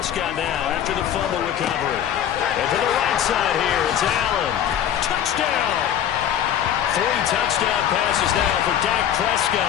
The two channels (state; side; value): quieter; right; 10.1 dB